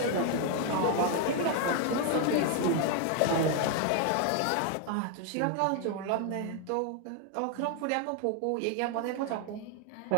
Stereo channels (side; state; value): both; different; correlation 0.00